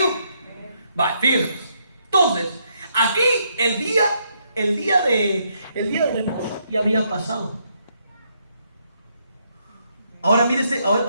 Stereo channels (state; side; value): inverted; both; correlation -0.75